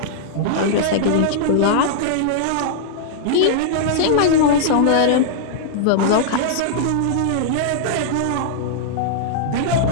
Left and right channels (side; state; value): both; different; correlation -0.02